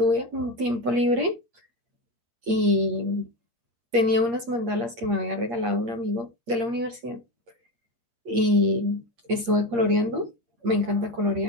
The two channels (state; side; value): late; left; 8.6 ms